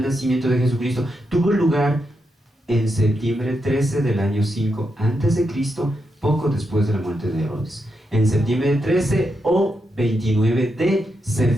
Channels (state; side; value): normal; both; correlation 0.84